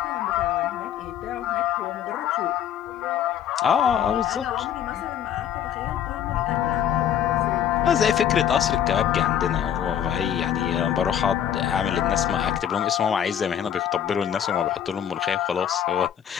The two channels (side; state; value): right; quieter; 9.6 dB